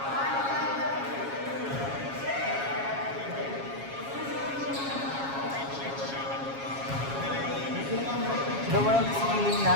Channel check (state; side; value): late; left; 7.3 ms